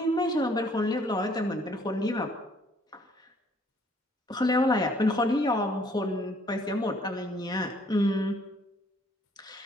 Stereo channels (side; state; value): both; normal; correlation 0.62